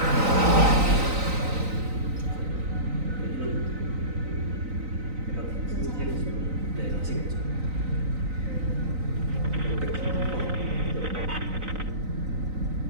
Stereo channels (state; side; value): late; left; 3.9 ms